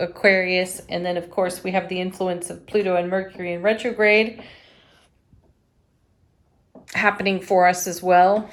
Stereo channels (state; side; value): identical; both; correlation 1.00